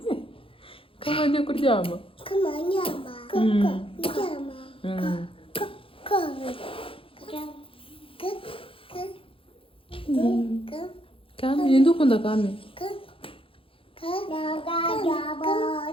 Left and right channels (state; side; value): late; right; 0.26 ms